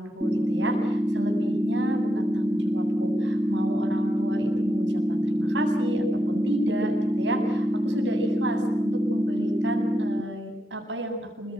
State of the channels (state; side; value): normal; both; correlation 0.85